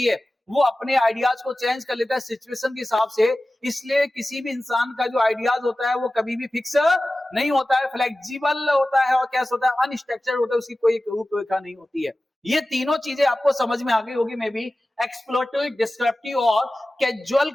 है, वो अपने आइडियाज को चेंज कर लेता है सिचुएशन के हिसाब से। इसलिए किसी भी इंसान का जो आइडियाज होता है वो कभी भी फिक्स नहीं होता है, फ्लेक्सिबल होता है और कैसे होता है, अनस्ट्रक्चर्ड होता है, उसकी कोई रूपरेखा नहीं होती है। ये तीनों चीजें आपको समझ में आ गई होगी मे बी। एक्सप्लोरेटरी, डिस्क्रिप्टिव और कैजुअल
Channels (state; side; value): normal; both; correlation 0.96